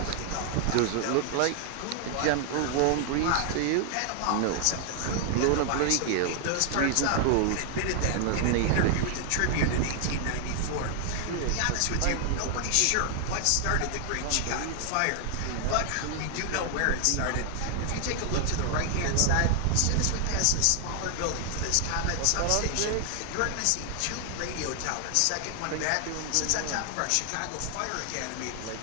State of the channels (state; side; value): different; both; correlation 0.00